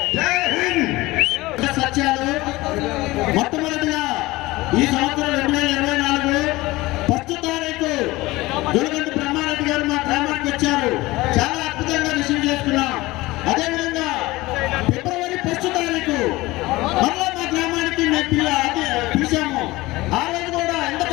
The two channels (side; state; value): right; quieter; 19.9 dB